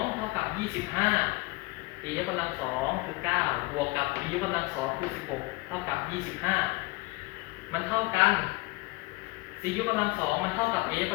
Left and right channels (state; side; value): quieter; right; 23.5 dB